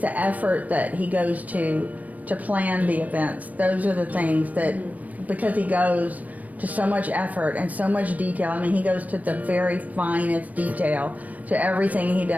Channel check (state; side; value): late; left; 0.073 ms